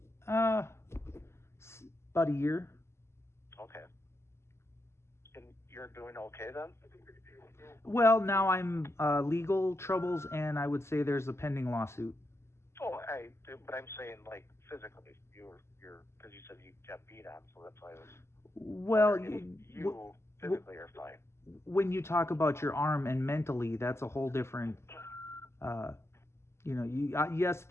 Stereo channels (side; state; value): right; late; 0.13 ms